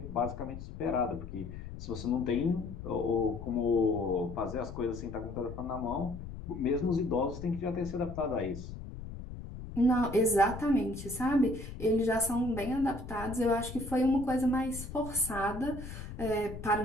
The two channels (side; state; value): left; noise; rumble, 10 dB below the sound